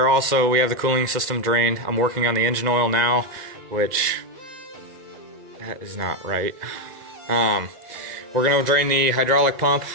the cooling system drained. I'm working on the engine oil now, which that is not right. We're gonna drain the hydraulic pump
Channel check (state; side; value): late; left; 2.0 ms